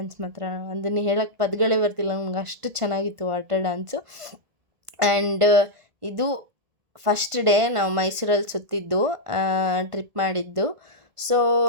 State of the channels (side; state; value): left; late; 1.5 ms